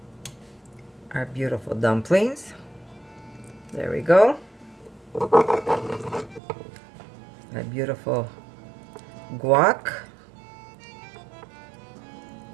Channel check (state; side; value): drops out; left; at 6.4 s